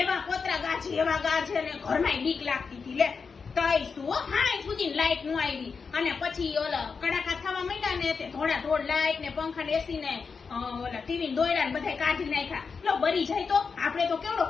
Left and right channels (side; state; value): right; quieter; 5.3 dB